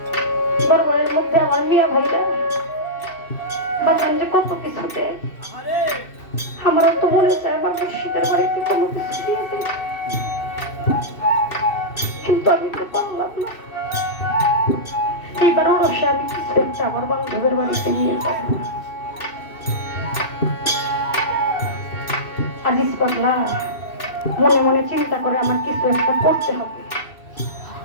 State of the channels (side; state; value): right; late; 2.6 ms